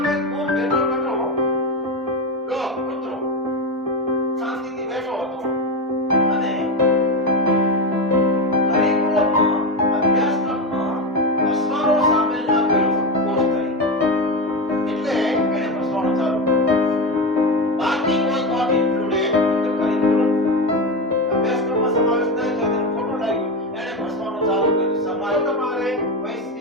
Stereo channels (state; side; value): normal; both; correlation 0.16